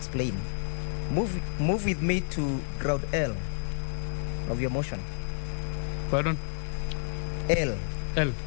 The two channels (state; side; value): silent; right; digital silence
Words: Move with me to ground L of your motion. Pardon? L. L.